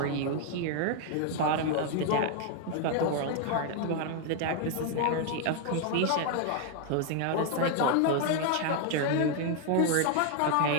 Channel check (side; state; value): both; different; correlation 0.01